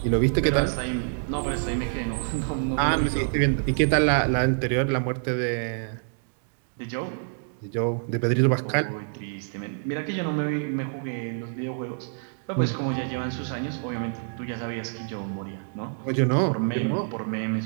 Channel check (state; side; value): silent; left; digital silence